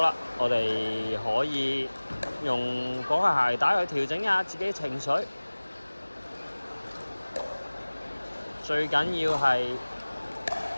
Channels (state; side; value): inverted; both; correlation -1.00